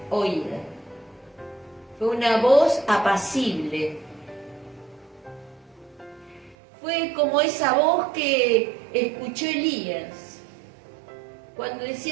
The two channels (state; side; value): drops out; left; at 6.6 s